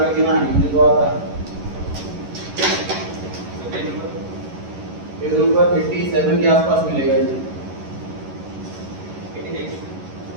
ना आएंगे, मुझे तो आता है। पेज नंबर 87 के आसपास मिलेगा ये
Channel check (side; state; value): left; late; 11 ms